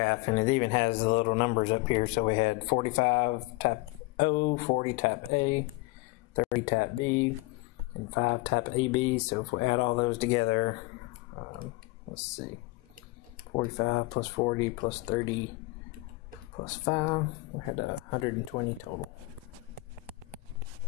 and it even has the little numbers up here. So we had 45 type O, 40 type A, 30 type B, and 5 type AB. So if we add all those together, let's see, 45 plus 40 plus 30 plus 5, we had 120 total.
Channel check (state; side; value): quieter; right; 22.5 dB